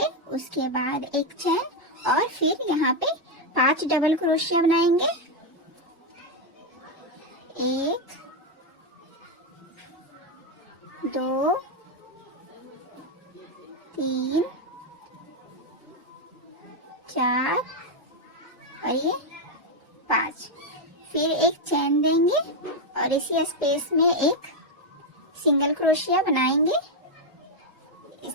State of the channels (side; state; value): both; normal; correlation 0.04